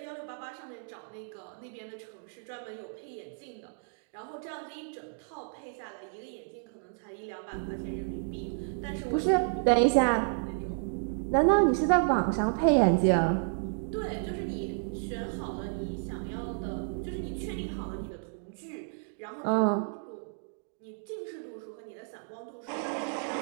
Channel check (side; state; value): left; silent; digital silence